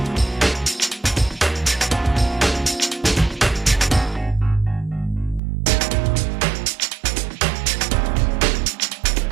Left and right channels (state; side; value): drops out; left; at 5.4 s